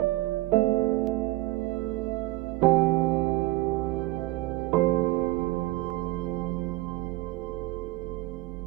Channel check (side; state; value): left; quieter; 19.0 dB